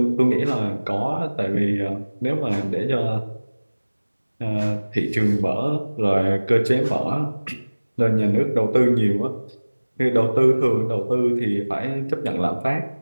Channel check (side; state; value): both; inverted; correlation -1.00